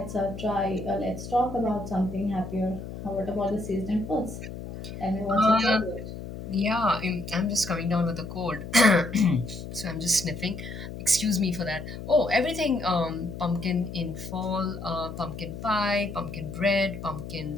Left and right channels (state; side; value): noise; left; hum, 9 dB below the sound